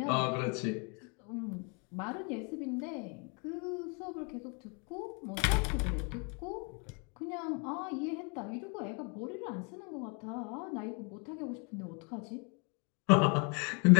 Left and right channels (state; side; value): quieter; right; 35.0 dB